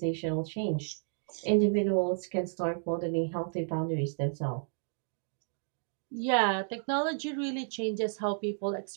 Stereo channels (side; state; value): left; silent; digital silence